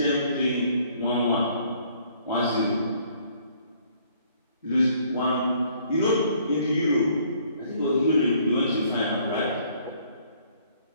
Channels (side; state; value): both; inverted; correlation -0.62